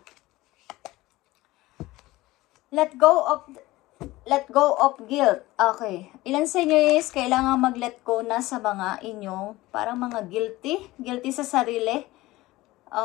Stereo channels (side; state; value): right; quieter; 18.6 dB